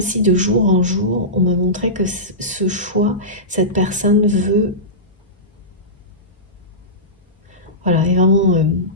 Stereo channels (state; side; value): normal; both; correlation -0.18